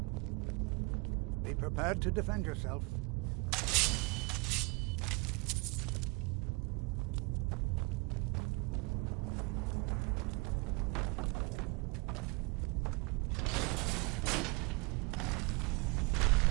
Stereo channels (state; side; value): quieter; left; 27.9 dB